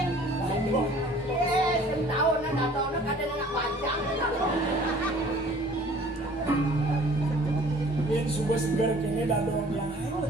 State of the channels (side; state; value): both; normal; correlation 0.52